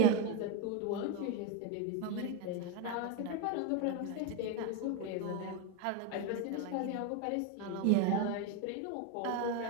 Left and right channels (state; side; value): different; both; correlation 0.03